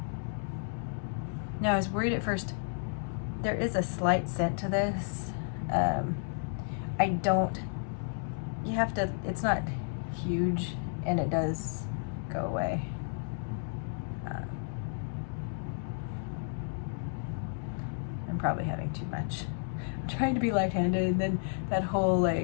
Now I was worried at first. There is a slight scent to this. You have to, it's not huge, and it does go away. I'm probably having too much. I'm trying to be light-handed, and then that whole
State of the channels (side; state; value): right; silent; digital silence